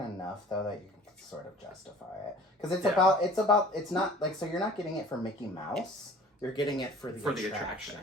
enough, though, that you can sort of justify it. Because it's not, like, so you're not getting it for Mickey Mouse, you're getting it for the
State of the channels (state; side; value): normal; both; correlation 0.47